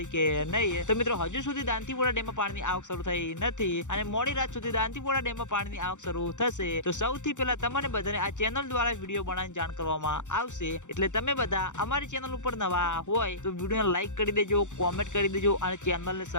કે નહીં। તો મિત્રો હજુ સુધી દાંતીવાડા ડેમમાં પાણીની આવક શરૂ થઈ નથી અને મોડી રાત સુધી દાંતીવાડા ડેમમાં પાણીની આવક શરૂ થશે। તો સૌથી પહેલા તમને બધાને આ ચેનલ દ્વારા વિડીયો બનાવીને જાણ કરવામાં આવશે, એટલે તમે બધા અમારી ચેનલ ઉપર નવા હોય તો વિડીયોને લાઈક કરી દેજો, કોમેન્ટ કરી દેજો અને ચેનલને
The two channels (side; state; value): right; late; 0.85 ms